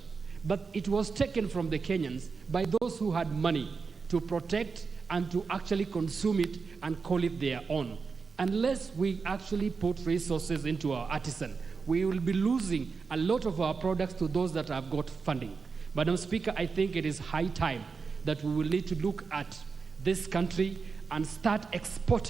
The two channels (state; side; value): quieter; left; 4.9 dB